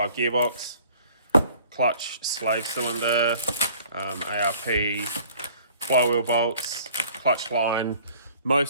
Clutch, slave cylinder, ARP, flywheel bolts, clutch line.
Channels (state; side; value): inverted; both; correlation -0.53